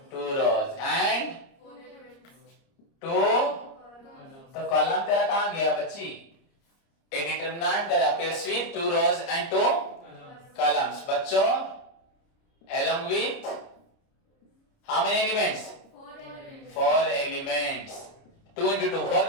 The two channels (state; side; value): late; right; 30 ms